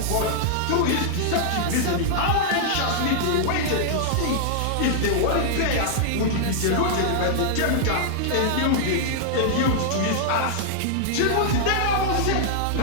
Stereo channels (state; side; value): different; both; correlation -0.01